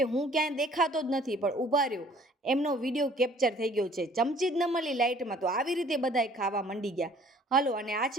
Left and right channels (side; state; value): both; normal; correlation 0.55